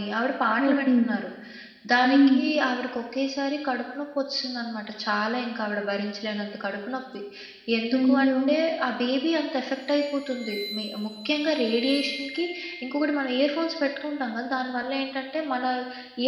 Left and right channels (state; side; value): identical; both; correlation 1.00